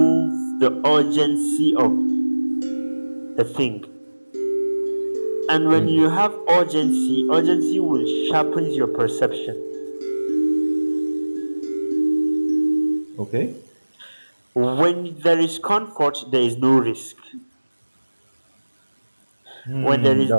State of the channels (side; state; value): both; inverted; correlation -1.00